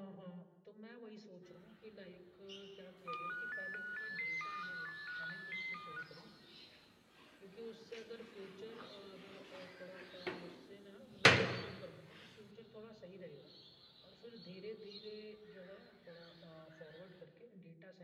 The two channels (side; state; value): both; identical; correlation 1.00